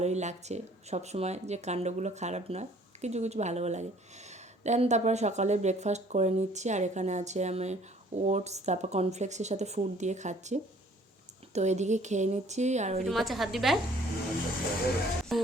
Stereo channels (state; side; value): normal; both; correlation 0.57